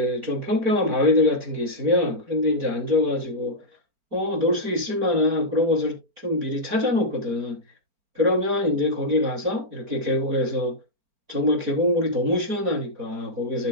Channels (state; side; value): late; left; 4.4 ms